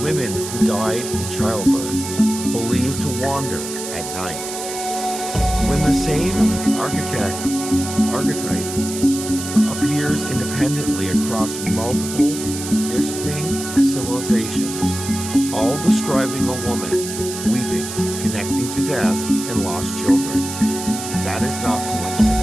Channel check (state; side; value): noise; right; hiss, 8 dB below the sound